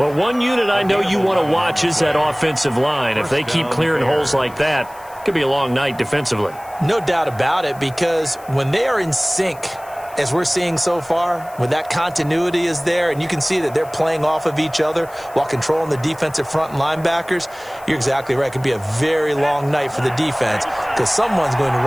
one unit I know you want to watch is that offensive line. If they keep clearing holes like that, it could be a long night defensively. No doubt about it, because when they are in sync, as we're seeing so far, when that continuity is there and you can see that they're playing off of each other while controlling the defensive front and linebackers, you're exactly right. It could be a very long night for the defense because someone's going to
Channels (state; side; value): noise; left; hiss, 23 dB below the sound